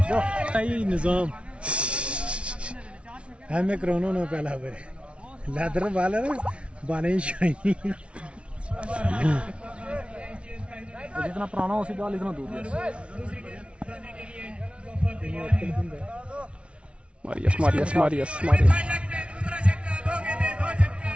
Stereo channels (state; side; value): late; left; 0.060 ms